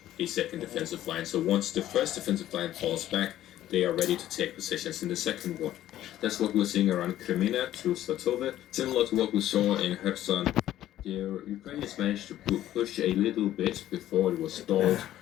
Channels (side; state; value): right; quieter; 13.1 dB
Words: a second defensive line. So once the first defensive line falls back, they are ready to take positions in the second one. That's what we're seeing around Kremina through Svatove. Similar to what we saw in Kherson, the Ukrainians managed to push a little bit before it was stalled,